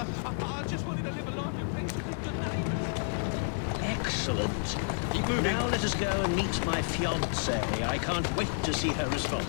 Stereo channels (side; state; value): right; silent; 57 dB below the other